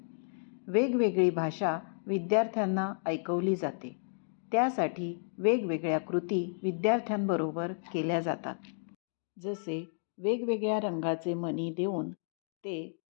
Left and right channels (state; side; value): silent; right; digital silence